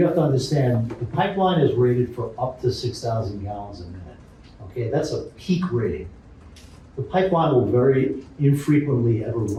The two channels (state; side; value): identical; both; correlation 1.00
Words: have to understand, the pipeline is rated for up to 6,000 gallons a minute. Okay, that's a peak rating. The pipeline will very infrequently ever